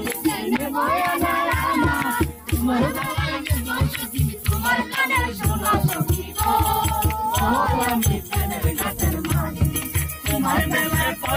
নেব না তোমার গানে সখী তোমার গানে শোনা সখী গো ও আমি প্রেমের গানের মাঝি তোমার গানে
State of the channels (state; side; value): identical; both; correlation 1.00